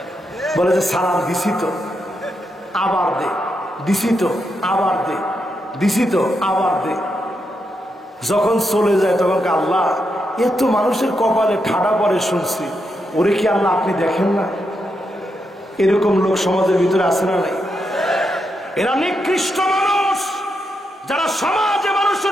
বলে যে সালাম দিছি তো, আবার দে, দিছি তো, আবার দে, দিছি তো, আবার দে। যখন চলে যায় তখন আল্লাহ এত মানুষের কপালে ঠাডা পরে শুনছি, ওরে কি আল্লাহ আপনি দেখেন না? এরকম লোক সমাজের ভিতরে আছে না নাই? এরা নিকৃষ্ট মানুষ, যারা সমাজে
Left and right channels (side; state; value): both; normal; correlation 0.83